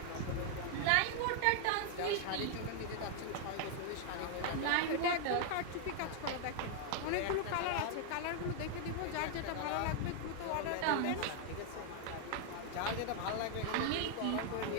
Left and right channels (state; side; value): different; both; correlation 0.00